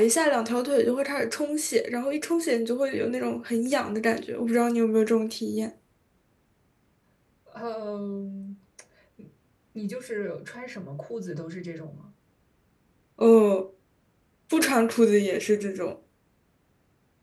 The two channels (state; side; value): identical; both; correlation 1.00